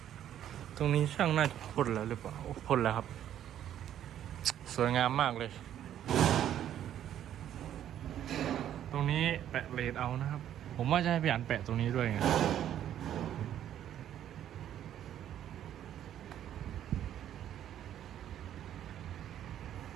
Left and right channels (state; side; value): quieter; left; 10.9 dB